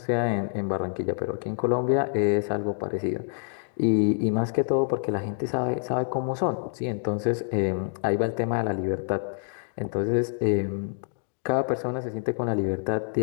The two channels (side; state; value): right; silent; digital silence